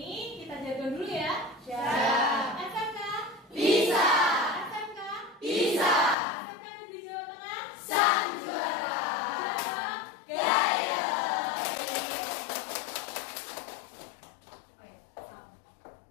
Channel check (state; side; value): drops out; right; at 6.2 s